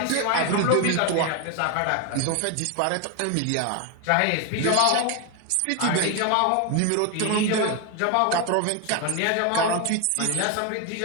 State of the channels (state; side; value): different; both; correlation 0.01